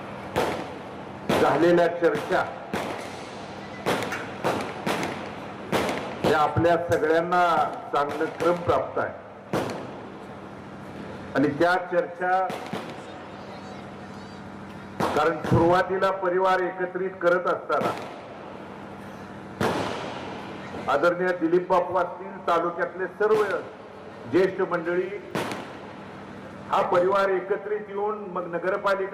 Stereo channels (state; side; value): identical; both; correlation 1.00